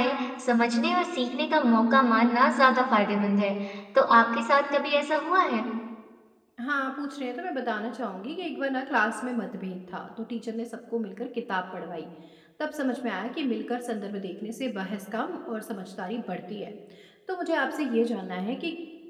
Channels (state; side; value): identical; both; correlation 1.00